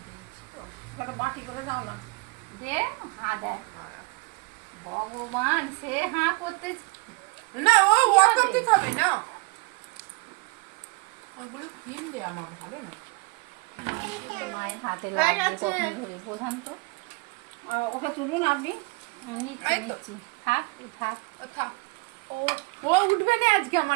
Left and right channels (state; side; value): quieter; left; 27.9 dB